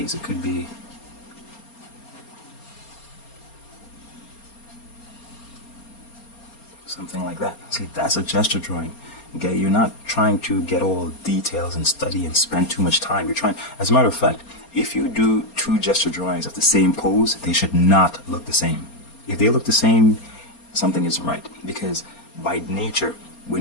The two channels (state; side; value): late; right; 4.3 ms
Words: it could be something like that. See, that's a gesture drawing. Okay, you're not trying to get all details and study and spend too much time. You're trying, as a matter of fact, if you do two gesture drawings of the same pose, they should not look the same. If they look the same, something isn't right, because by nature,